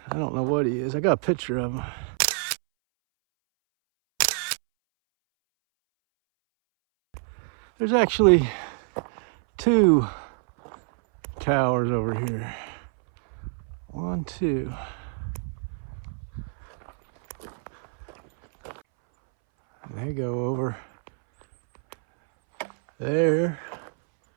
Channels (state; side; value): silent; left; 61 dB below the other